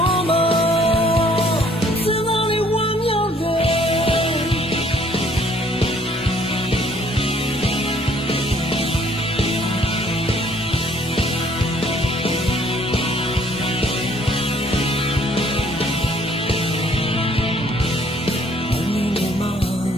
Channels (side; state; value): both; normal; correlation 0.61